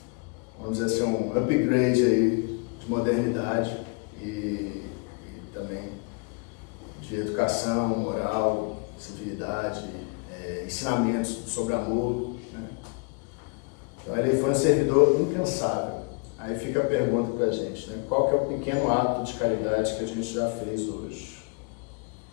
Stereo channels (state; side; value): quieter; right; 33.7 dB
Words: vamos dizer assim, um upgrade aí de modernidade e também de educação, moral, civilidade, ensinamentos sobre amor, né? Então ele foi um servidor incansável. Aí fica a pergunta pra gente, né? Qual que é o pequeno ato de caridade que a gente já fez hoje?